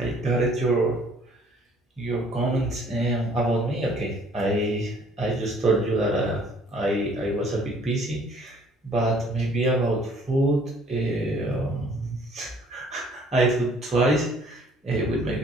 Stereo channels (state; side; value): normal; both; correlation 0.58